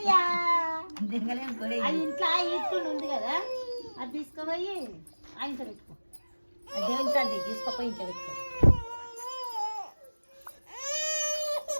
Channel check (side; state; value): both; inverted; correlation -1.00